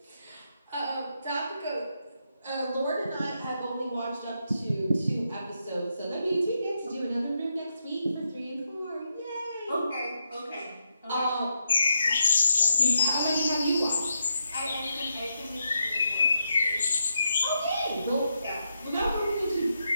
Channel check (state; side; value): inverted; both; correlation -0.82